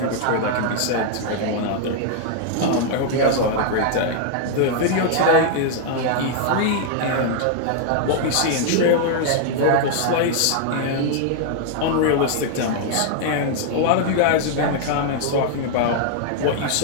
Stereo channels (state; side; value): different; both; correlation 0.00